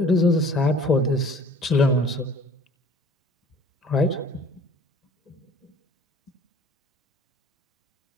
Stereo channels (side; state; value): both; normal; correlation 0.50